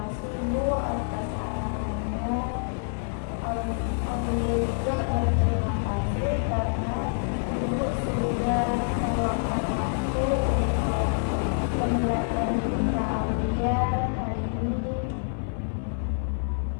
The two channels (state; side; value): silent; right; digital silence